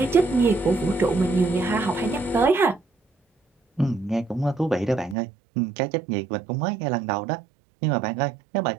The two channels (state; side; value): drops out; left; at 5.2 s